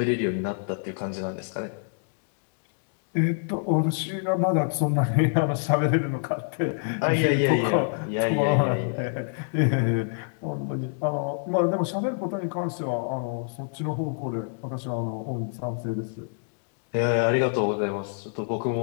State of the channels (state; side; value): silent; right; digital silence